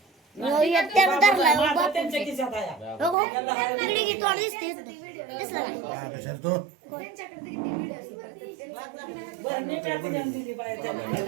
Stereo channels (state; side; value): drops out; left; at 3.2 s